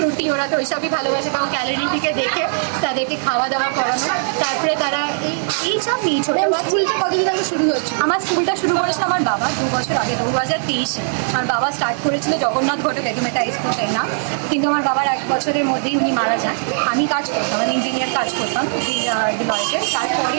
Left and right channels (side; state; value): left; silent; 61 dB below the other